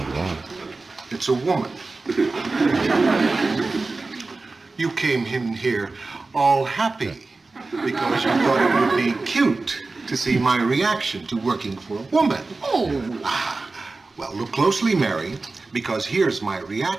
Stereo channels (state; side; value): quieter; left; 3.6 dB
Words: wrong. It's a woman. You came in here all happy because you thought it would be cute to see my reaction to working for a woman. Oh. Well, look closely, Mary, because here's my